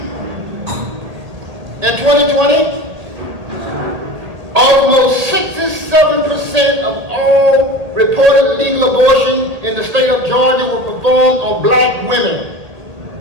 In 2020, almost 67% of all reported legal abortion in the state of Georgia were performed on black women.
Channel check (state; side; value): late; left; 1.8 ms